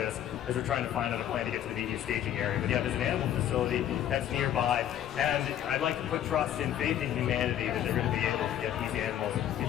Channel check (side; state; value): right; quieter; 11.0 dB